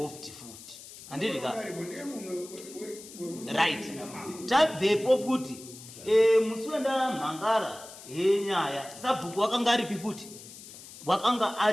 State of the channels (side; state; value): left; noise; hiss, 16 dB below the sound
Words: futi handiti ka right tabvepo futi musi wendamhangara henyaya sabhuku wakanga aripi futi wakanga